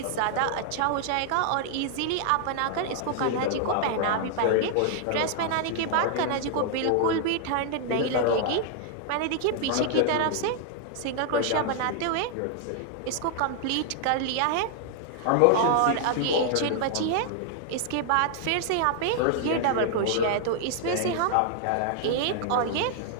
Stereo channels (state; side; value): different; both; correlation 0.00